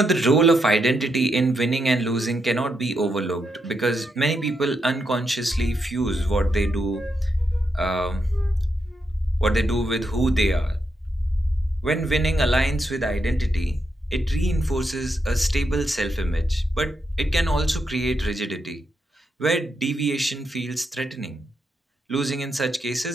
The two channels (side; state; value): both; normal; correlation 0.82